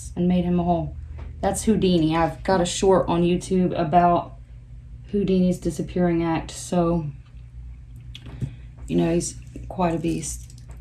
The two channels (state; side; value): identical; both; correlation 1.00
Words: and made him a hole. That's Houdini. I've got a short on YouTube about Houdini's disappearing act, so you know he's quite a beast.